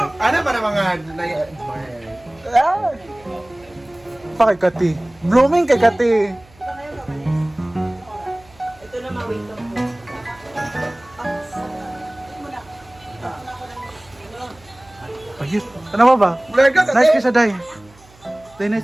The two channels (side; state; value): right; noise; hum, 27 dB below the sound